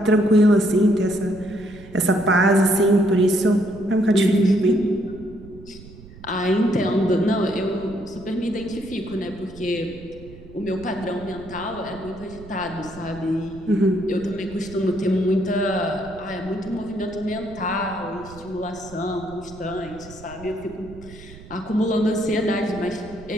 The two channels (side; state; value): right; noise; rumble, 18 dB below the sound